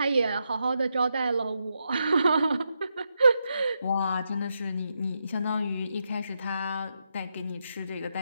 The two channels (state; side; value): inverted; both; correlation -0.84